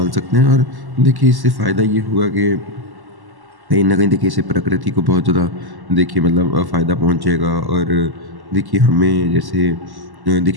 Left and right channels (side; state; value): left; late; 1.1 ms